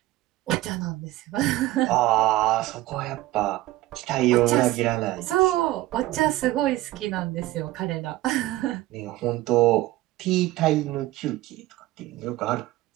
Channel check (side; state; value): left; quieter; 17.0 dB